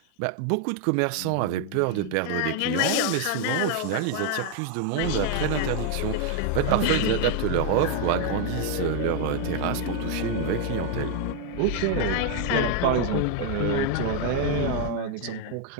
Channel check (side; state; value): both; different; correlation 0.01